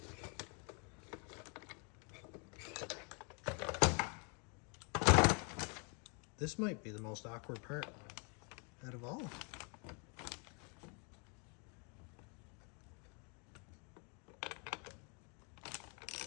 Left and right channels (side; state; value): right; quieter; 36.1 dB